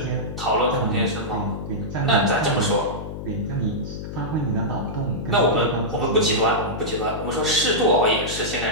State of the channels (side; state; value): left; noise; hum, 8 dB below the sound